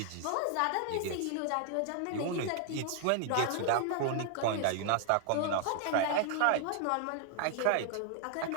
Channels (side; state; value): both; different; correlation 0.00